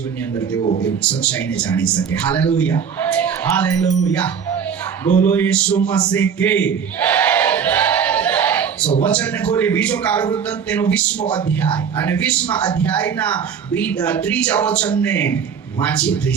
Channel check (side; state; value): left; quieter; 7.1 dB